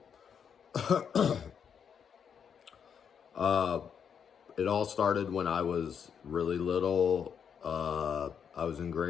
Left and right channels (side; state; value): right; quieter; 7.4 dB